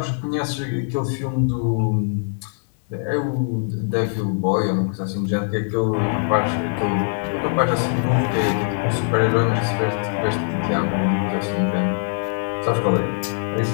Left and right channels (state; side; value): silent; right; digital silence